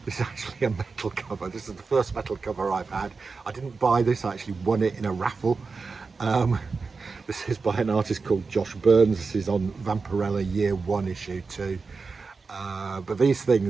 This is actually a metal cover. This is the first metal cover I've had. I didn't buy this, I actually won it in a raffle. This is by an artist called Josh Burns. This is on Vampirella Year 1 issue 2. But these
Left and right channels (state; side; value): quieter; left; 4.5 dB